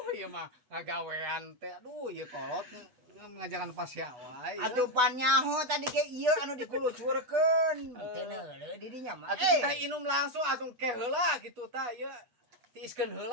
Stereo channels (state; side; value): late; left; 8.1 ms